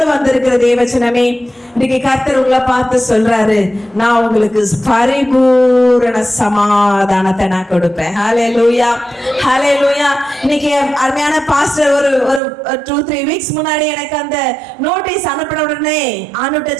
வந்திருக்கிற தேவச்சனமே, இன்னைக்கு கர்த்தர் உங்களை பார்த்து சொல்றாரு, நான் உங்களுக்கு பரிபூரண சமாதானத்தை நான் கொடுப்பேன். ஹல்லேலூயா, ஹல்லேலூயா. இன்னைக்கு அருமையான பாஸ்டர் ஒரு 2-3 வீக்ஸ் முன்னாடி எனக்கு அந்த நோட்டீஸ் அனுப்பின உடனே ஆண்டுகிட்ட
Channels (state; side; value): drops out; left; at 12.4 s